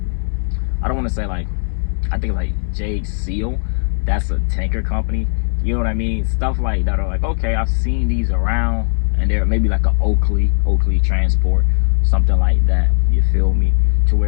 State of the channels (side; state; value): right; silent; digital silence